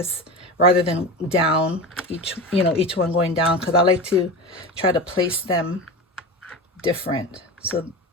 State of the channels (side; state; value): both; normal; correlation 0.26